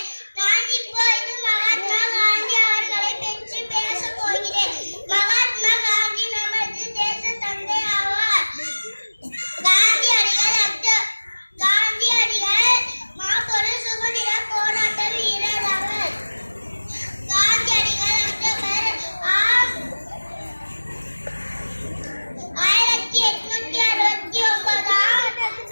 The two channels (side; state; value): both; inverted; correlation -1.00